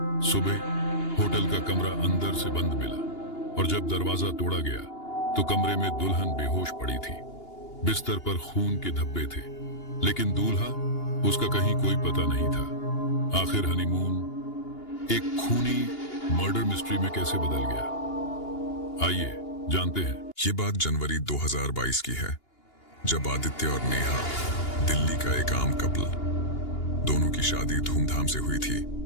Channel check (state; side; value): late; right; 2.8 ms